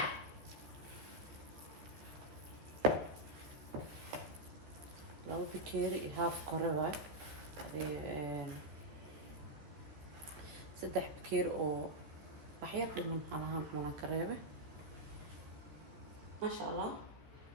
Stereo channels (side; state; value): left; late; 13 ms